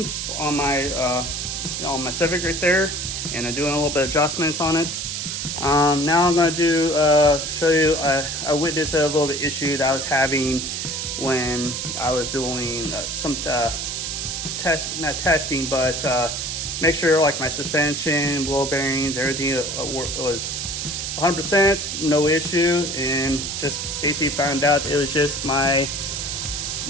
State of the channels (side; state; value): right; noise; hiss, 3 dB below the sound